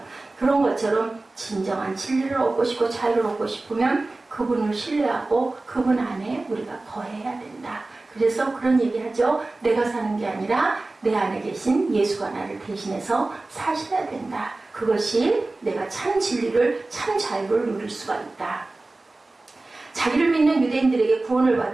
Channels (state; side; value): quieter; left; 3.1 dB